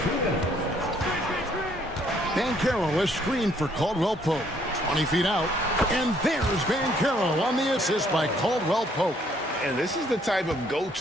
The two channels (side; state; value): both; normal; correlation 0.66